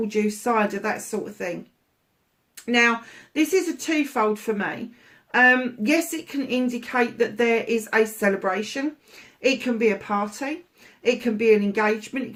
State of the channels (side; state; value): both; identical; correlation 1.00